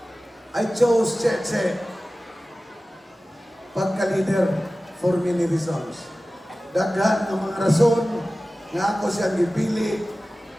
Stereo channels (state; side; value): normal; both; correlation 0.96